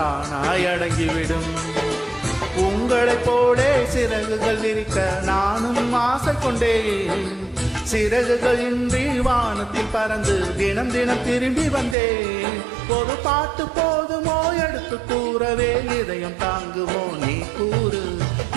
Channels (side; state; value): left; drops out; at 12.0 s